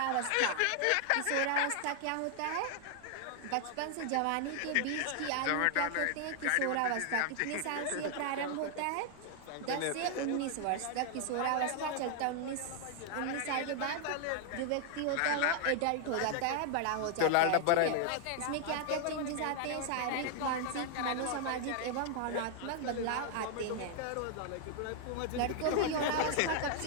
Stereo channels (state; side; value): different; both; correlation 0.00